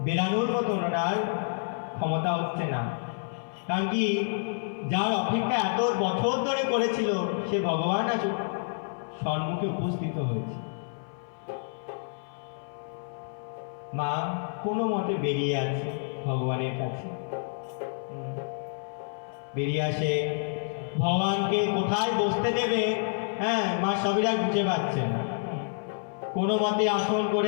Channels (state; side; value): silent; right; 57 dB below the other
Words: বেরানোর মতো ওনার ক্ষমতা হচ্ছে না। কারণ কি, যার অপেক্ষা এত বছর ধরে করেছিল সে ভগবান আজ সম্মুখে উপস্থিত হয়েছে। মা কোনো মতে বেরিয়ে আছে ভগবানের কাছে। বেরিয়ে আসে, ভগবানকে কোথায় বসতে দেবে, হ্যাঁ, মা শবরী বুঝে পাচ্ছে না। কোনো মতে আসন